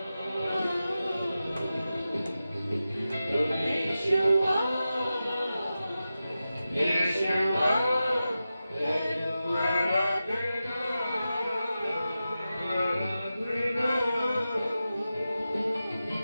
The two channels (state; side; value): inverted; both; correlation -0.92